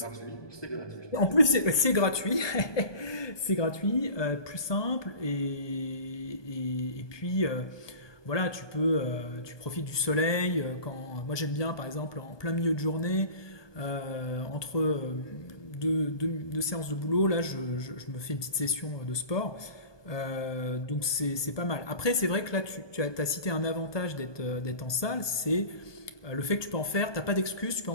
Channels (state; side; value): late; right; 1.2 ms